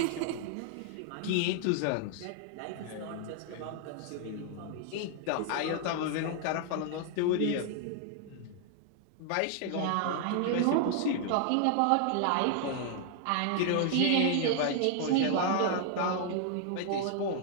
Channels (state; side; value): different; both; correlation 0.00